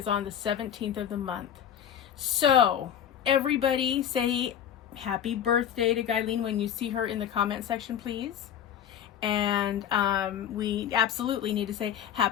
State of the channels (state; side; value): quieter; right; 9.5 dB